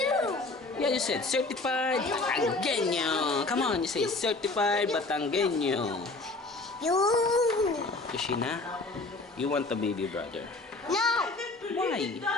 Yeah, you said certified Batanggenyo. Come on, you say certified Batanggenyo. You. Yoshina, you want a baby brother. No. Why?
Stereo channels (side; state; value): right; quieter; 3.3 dB